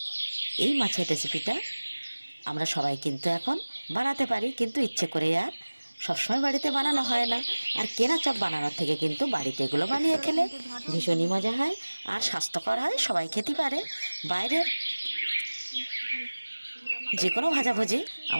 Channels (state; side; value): inverted; both; correlation -1.00